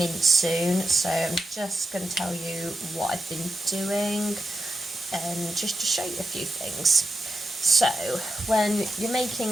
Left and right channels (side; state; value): both; normal; correlation 0.88